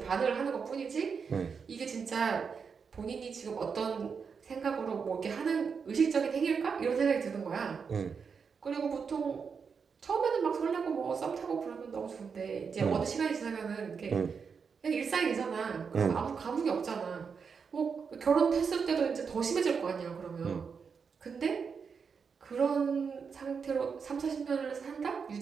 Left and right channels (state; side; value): quieter; left; 5.9 dB